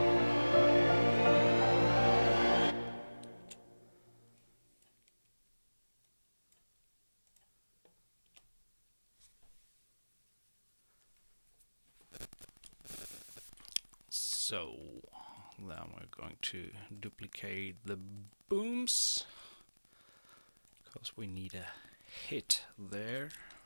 So then we're going to duplicate the booms, because we need a hit there.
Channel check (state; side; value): inverted; both; correlation -1.00